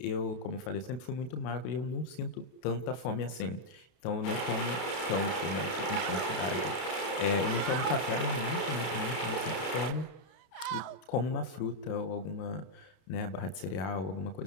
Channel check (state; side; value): late; right; 32 ms